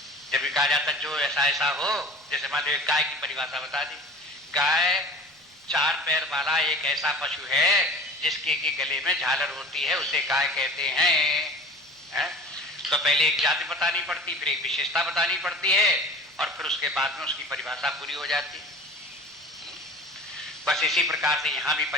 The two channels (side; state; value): both; normal; correlation 0.41